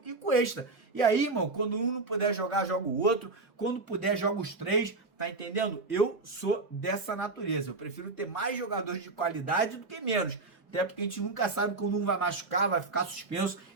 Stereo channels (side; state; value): left; quieter; 3.6 dB